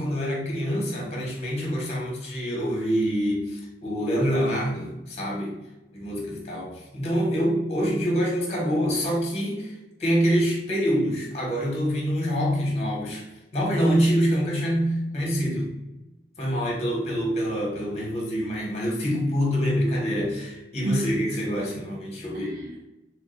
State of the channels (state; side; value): normal; both; correlation 0.80